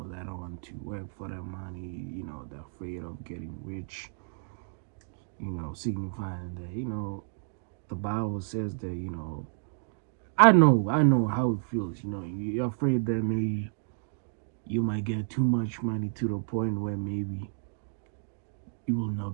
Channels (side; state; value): left; silent; digital silence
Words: want to work for their money. They're afraid of getting rich. Signifying that the Bible says that I know how it feels. You're afraid that maybe you might get too much money to the point where maybe you will not